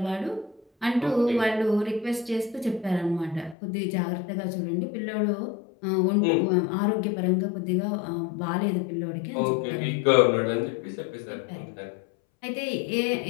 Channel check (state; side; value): drops out; right; at 3.6 s